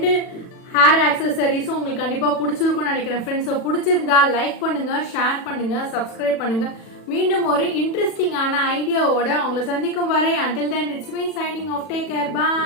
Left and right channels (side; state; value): right; late; 40 ms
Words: ஹேர் ஆக்சசரிஸும் உங்களுக்கு கண்டிப்பாக பிடிச்சிருக்கும்னு நினைக்கிறேன் ஃப்ரெண்ட்ஸ். ஸோ பிடிச்சிருந்தா லைக் பண்ணுங்கள், ஷேர் பண்ணுங்கள், சப்ஸ்கிரைப் பண்ணுங்கள். மீண்டும் ஒரு இன்ட்ரெஸ்டிங்கான ஐடியாவோட உங்களை சந்திக்கும் வரை until then it's me signing off. Take care.